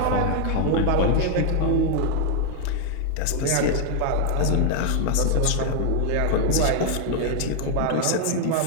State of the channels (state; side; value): different; both; correlation 0.00